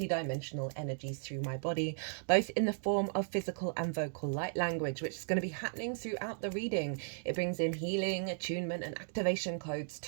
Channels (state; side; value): silent; left; digital silence